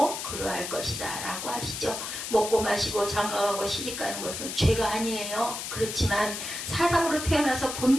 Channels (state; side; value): noise; left; hiss, 6 dB below the sound